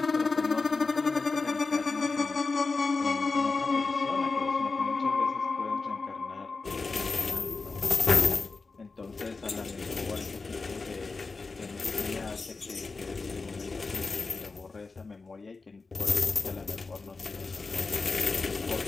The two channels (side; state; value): right; quieter; 4.0 dB